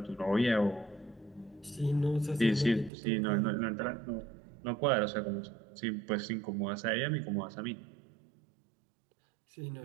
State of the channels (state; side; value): drops out; left; at 2.9 s